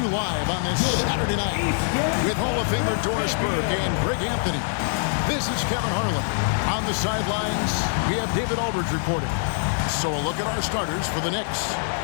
live on this Saturday night with Hall of Famer Doris Burke and Greg Anthony. This is Kevin Harlan. On the sidelines, we have David Aldridge reporting. So a look at our starters for the Knicks.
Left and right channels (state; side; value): silent; right; 62 dB below the other